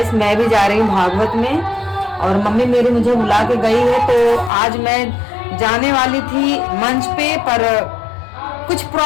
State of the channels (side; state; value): right; drops out; at 4.5 s